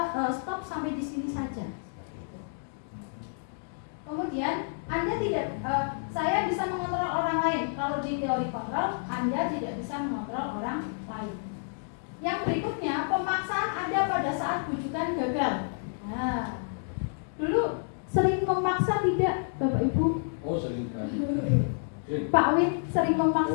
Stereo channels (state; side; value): silent; right; digital silence